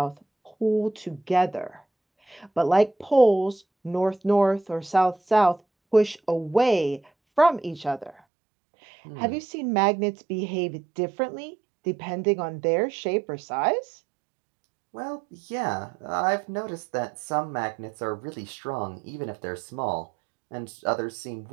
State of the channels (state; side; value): drops out; left; at 8.2 s